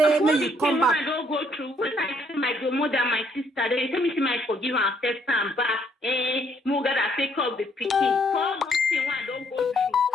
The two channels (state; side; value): normal; both; correlation 0.68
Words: may you come back. I don't go through. When I see my grandmother, my sister, they tell me, say, may I forgive her and accept her back. Moga that take up the picking. For those things I don't go through.